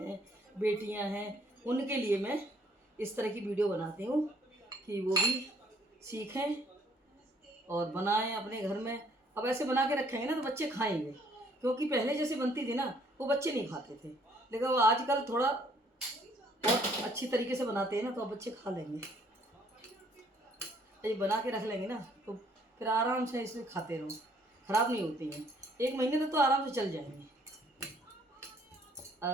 बेटियां हैं, उनके लिए मैं इस तरह की वीडियो बनाती हूँ कि वो भी सीखें और बनाएं अपने घर में। अब ऐसे बना के रखेंगे ना तो बच्चे खाएंगे, क्योंकि पहले जैसे बनती थी ना वो बच्चे नहीं खाते थे, लेकिन वो आजकल थोड़ा बहुत अच्छी तरीके से बनाते हैं ना, तो अब बच्चे खा लेंगे। ये बना के रख लेंगे ना तो फिर आराम से इसे खाते रहो, ख़राब नहीं होती हैं। 1 महीने तक तो आराम से चल जाएंगी,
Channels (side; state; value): both; normal; correlation 0.63